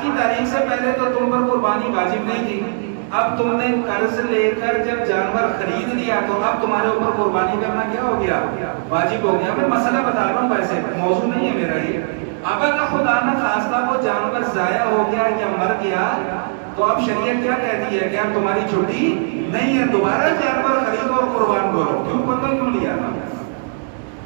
کی تاریخ سے پہلے تو تم پر قربانی واجب نہیں تھی. اب تم نے قرض لے کر جب جانور خرید لیا تو اب تمہارے اوپر قربانی کرنا کیا ہو گیا, واجب ہو گیا. میں مسئلہ بتا رہا ہوں, ویسے موضوع نہیں ہے میرا یہ. اب اگر خدا نہ خواستہ وہ جانور ضائع ہو گیا یا مر گیا تو اب شریعت کیا کہتی ہے کہ اب تمہاری چھٹی نہیں ہے, دوبارہ جانور خریدو اور قربان کرو. کیوں پتہ کیوں لیا تھا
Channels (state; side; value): silent; left; digital silence